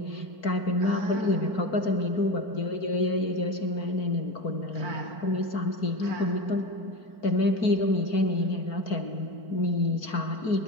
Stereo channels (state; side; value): late; right; 4.5 ms